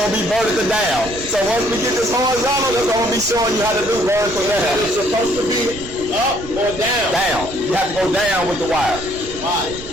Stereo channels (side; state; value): right; noise; rumble, 14 dB below the sound